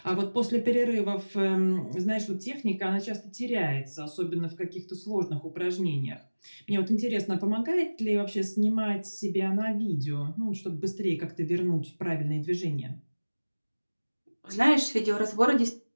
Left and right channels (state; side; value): inverted; both; correlation -1.00